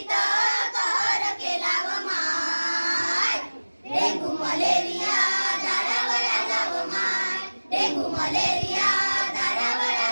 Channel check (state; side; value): inverted; both; correlation -1.00